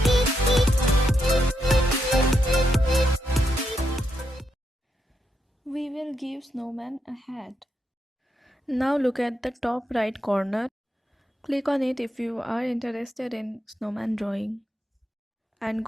We will give snowman a hat. Now look at the top right corner. Click on it if you are interested in snowman drawing. And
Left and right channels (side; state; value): both; normal; correlation 0.82